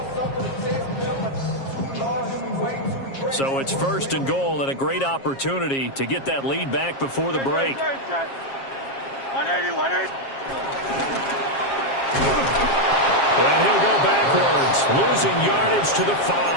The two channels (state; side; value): late; right; 7.4 ms